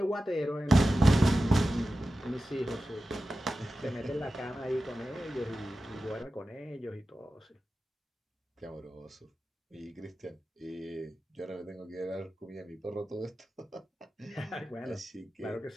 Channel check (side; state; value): both; normal; correlation 0.94